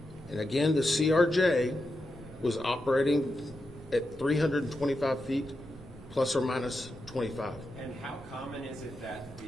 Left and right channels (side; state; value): both; normal; correlation 0.88